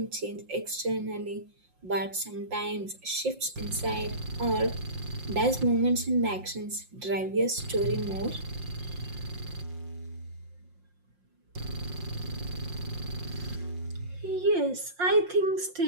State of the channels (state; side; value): late; left; 5.6 ms